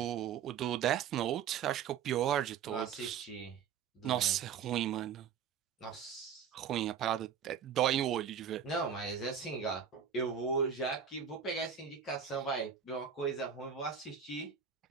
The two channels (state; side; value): quieter; left; 7.7 dB